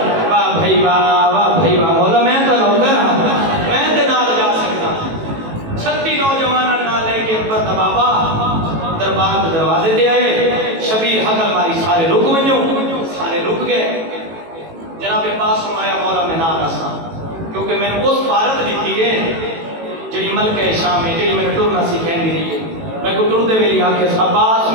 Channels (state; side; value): late; left; 18 ms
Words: واہ بھائی واہ بھائی واہ، مولا میں تے نوکر ہاں، میں تے نال جا سکدا۔ 36 نوجواناں نال لے کے پر بابا دربار کے دروازے تے آئے، شبیر حقل ماری سارے رک ونجو، سارے رک گئے۔ جناب عباس فرمایا مولا میں نہ رساں، کیونکہ میں نے اس بھارت دیتی ہے جڑی ملکہ شام ہے، جڑی میں نے ٹرنا سکھیندی رہی ہے۔ میں کو ٹردے ویلی آکھے عباس